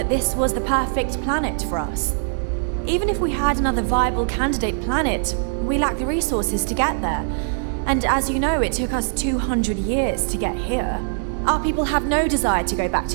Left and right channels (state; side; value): silent; left; digital silence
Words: this was the perfect planet for us. Even if we had another viable candidate planet, we lack the resources to get there. And as you know, it took us 200 years to get here. Our people have no desire to go back